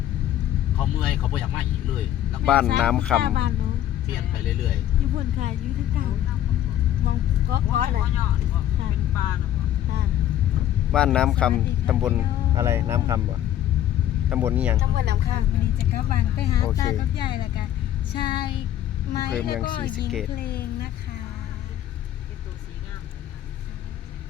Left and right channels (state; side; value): quieter; right; 11.9 dB